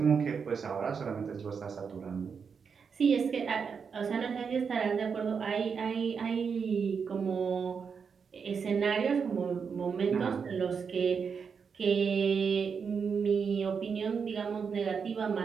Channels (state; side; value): quieter; left; 6.1 dB